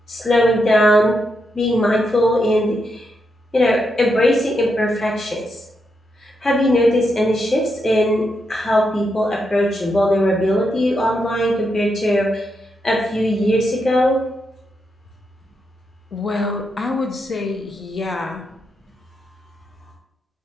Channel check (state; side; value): normal; both; correlation 0.83